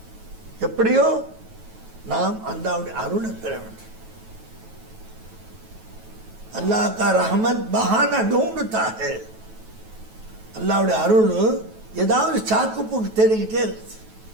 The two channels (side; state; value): left; late; 9.2 ms